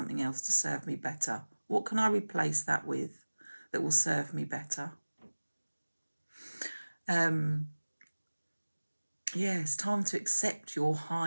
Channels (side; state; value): both; inverted; correlation -1.00